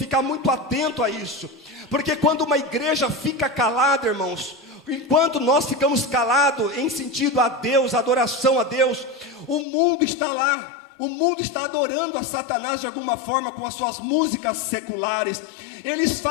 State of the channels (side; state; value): right; drops out; at 9.7 s